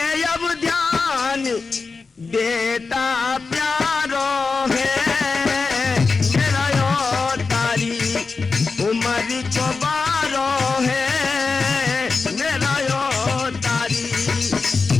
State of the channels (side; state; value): right; quieter; 4.4 dB